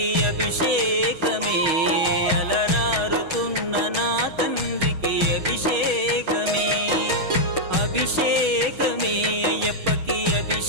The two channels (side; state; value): left; late; 6.3 ms